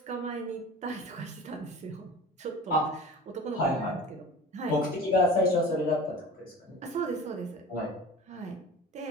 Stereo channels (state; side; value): normal; both; correlation 0.38